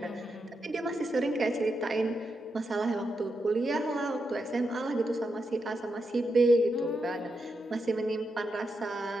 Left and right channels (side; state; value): both; normal; correlation 0.85